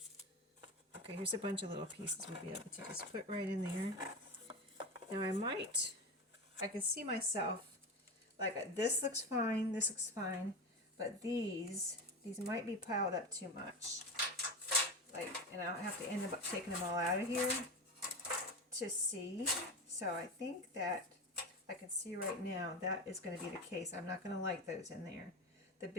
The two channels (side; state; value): both; normal; correlation 0.22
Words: Okay, here's a bunch of little pieces we'll be able to just put right in there. Now I can see myself, like, this looks fine, but these these might be piled up too much. And I'll have to end up taking them all out of here to see. So I think that I can see right now that is going to be the case. I'm not going to like those in there. The